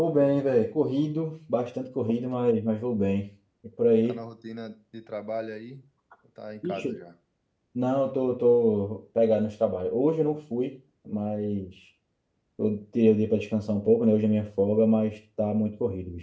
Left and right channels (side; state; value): both; identical; correlation 1.00